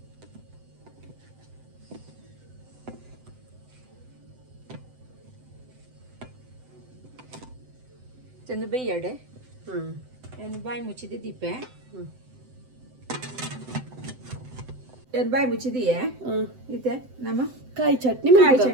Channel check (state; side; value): late; left; 7.8 ms